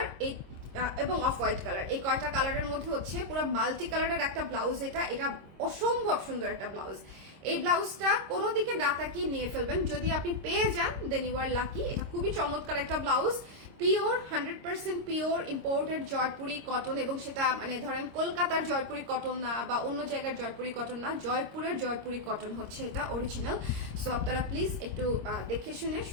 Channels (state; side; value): late; left; 26 ms